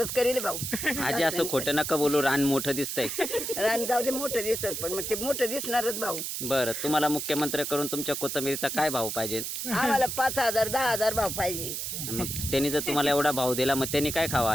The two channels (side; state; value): right; noise; hiss, 4 dB below the sound